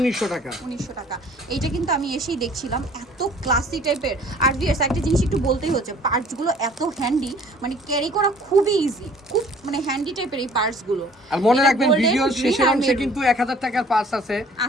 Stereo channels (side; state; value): both; normal; correlation 0.53